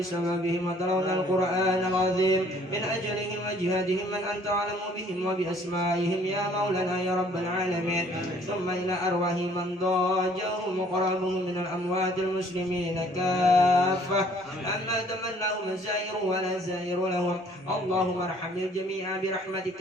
وتلون القرآن العظيم من أجلهم وجهادهم من أنت أعلم بهم وبأسمائهم يا مولانا يا رب العالمين ثم إلى أرواح من ضاجهم وقربهم من الأموات المسلمين كافة أما تمناه مزائر ولا زائر لهم اللهم ارحم الجميع برحمتك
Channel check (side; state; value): both; normal; correlation 0.59